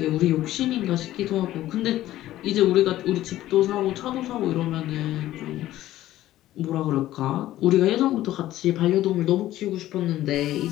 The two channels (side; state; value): right; quieter; 14.4 dB